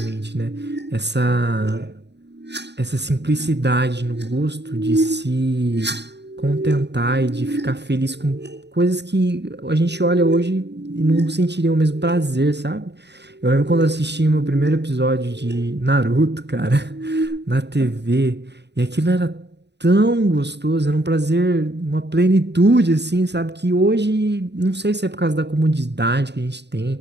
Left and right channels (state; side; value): late; left; 0.50 ms